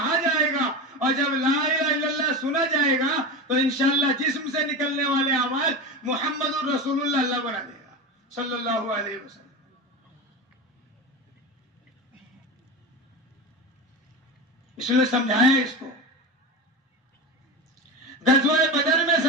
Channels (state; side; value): normal; both; correlation 0.23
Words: جائے گا اور جب لا الہ الا اللہ سنا جائے گا تو انشاءاللہ جسم سے نکلنے والے اعمال محمد الرسول اللہ اللہ بنا دے گا صلی اللہ علیہ وسلم. اس لیے سمجھایا اس کو، غزوہ بدر میں